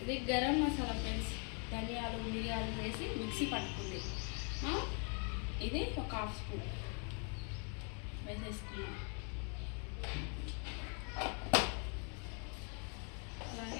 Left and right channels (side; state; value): right; quieter; 38.8 dB